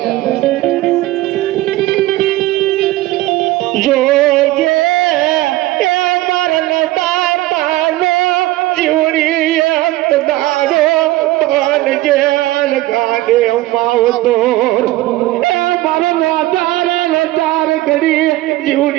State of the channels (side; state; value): left; quieter; 17.3 dB